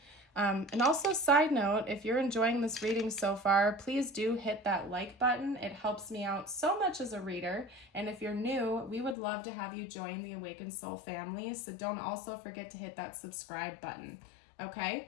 And also, side note, if you're enjoying this reading so far, please do hit that like button. It helps me out so much as a reader. And if you're new, we would love to have you join the Awakened Soul family. So don't also forget to hit that subscribe button.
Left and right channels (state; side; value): drops out; right; at 9.2 s